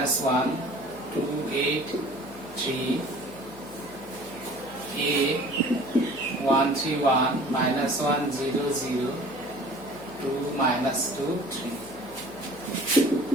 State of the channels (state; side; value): noise; left; hum, 21 dB below the sound